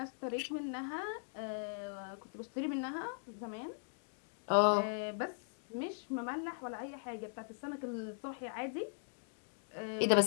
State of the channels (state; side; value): silent; right; digital silence